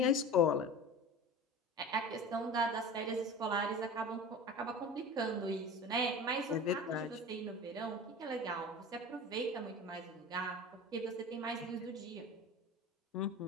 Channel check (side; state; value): both; normal; correlation 0.35